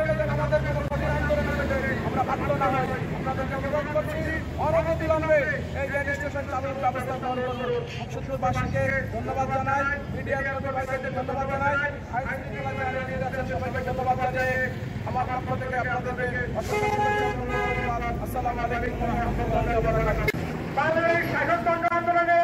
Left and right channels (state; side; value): identical; both; correlation 1.00